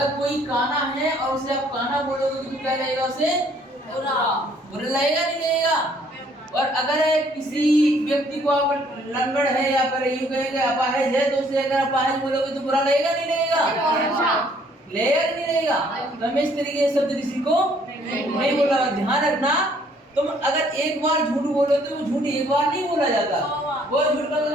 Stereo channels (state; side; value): normal; both; correlation 0.63